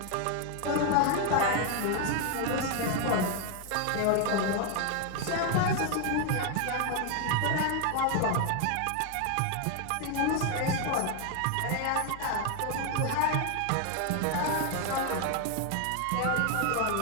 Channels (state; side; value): different; both; correlation 0.00